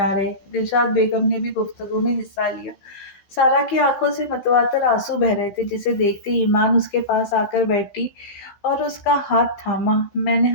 رہے۔ دلشاد بیگم نے بھی گفتگو میں حصہ لیا۔ سارا کی آنکھوں سے متواتر آنسو بہہ رہے تھے، جسے دیکھتے ایمان اس کے پاس آ کر بیٹھی اور اس کا ہاتھ تھاما۔ میں نے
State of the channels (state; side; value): late; right; 16 ms